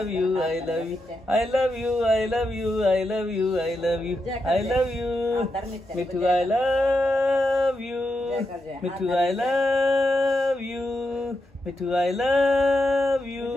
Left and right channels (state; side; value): normal; both; correlation 0.85